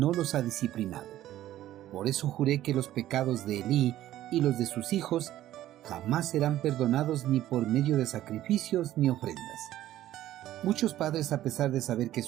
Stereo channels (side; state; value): left; quieter; 13.5 dB